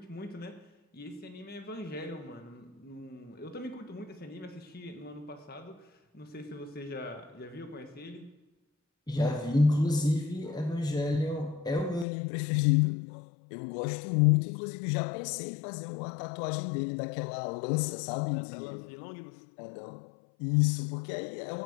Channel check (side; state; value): right; drops out; at 12.1 s